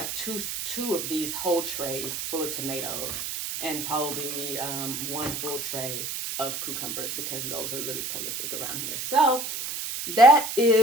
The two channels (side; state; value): right; noise; hiss, 4 dB below the sound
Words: two of these whole trays full of tomatoes. And probably 1 full tray of cucumbers because those are really prolific around here. So that